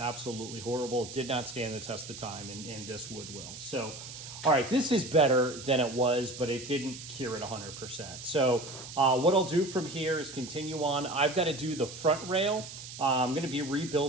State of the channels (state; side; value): noise; right; hiss, 12 dB below the sound